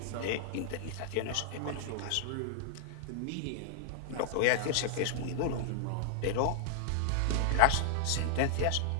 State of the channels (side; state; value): both; different; correlation -0.01